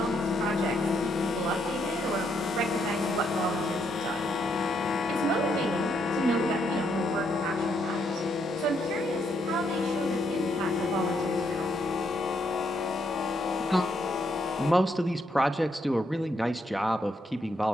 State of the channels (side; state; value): both; normal; correlation 0.75